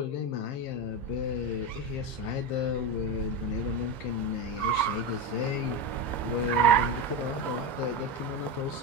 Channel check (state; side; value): late; right; 15 ms